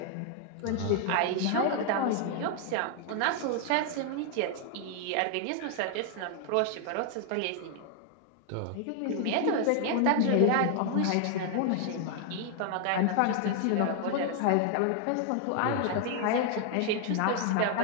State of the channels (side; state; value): both; different; correlation 0.00